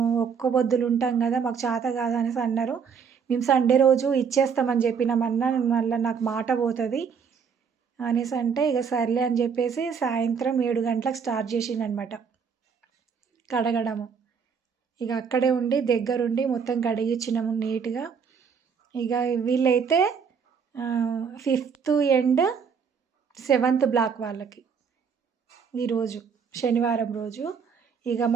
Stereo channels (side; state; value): left; quieter; 6.4 dB